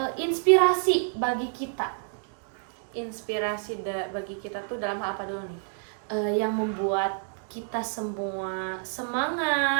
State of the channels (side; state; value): left; silent; 59 dB below the other